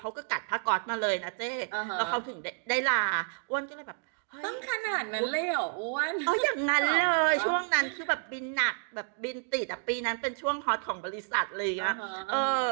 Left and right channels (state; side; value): silent; left; 58 dB below the other